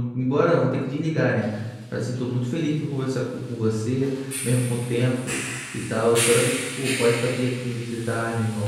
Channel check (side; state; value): both; identical; correlation 1.00